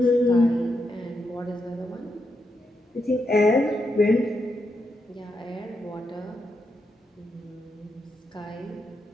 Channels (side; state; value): both; normal; correlation 0.83